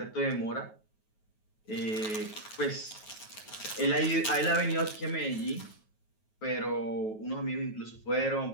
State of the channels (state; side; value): late; right; 9.3 ms